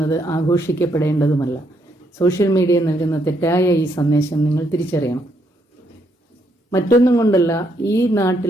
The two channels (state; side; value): normal; both; correlation 0.74